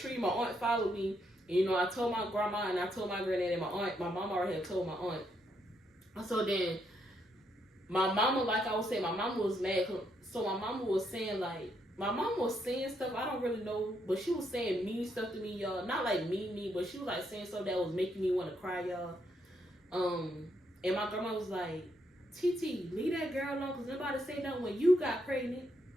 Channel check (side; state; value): both; normal; correlation 0.76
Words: My aunt followed me. And, you know, I told my grandma and I told my granddad and my aunt. My mama already had told my aunt. So then my mama, like I was saying, my mama was mad. So my mama was saying, like, my mama was saying stuff I don't really know, but she was saying mean stuff to me, y'all. Not like mean, but she was like saying stuff that was making me want to cry, y'all. And my grandma was like, TT, leave that girl alone, because nobody say nothing when you got pregnant.